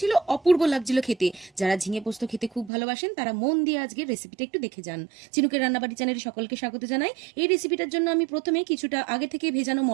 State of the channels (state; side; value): drops out; left; at 2.7 s